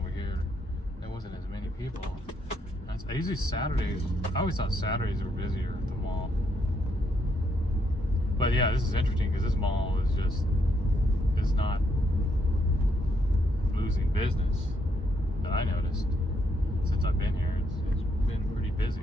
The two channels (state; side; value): normal; both; correlation 0.76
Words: here, there wasn't as many people. I always thought Saturdays were busier at the mall. But yeah, this is interesting because this mall is not losing business that I noticed since I've been here. It's been pretty